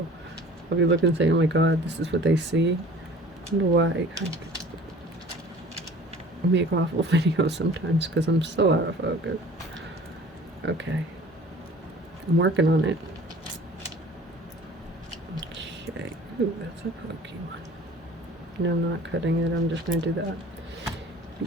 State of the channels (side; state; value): both; normal; correlation 0.46